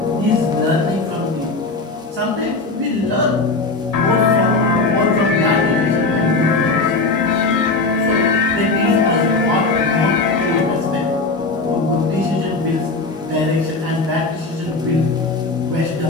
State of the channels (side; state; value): right; quieter; 3.6 dB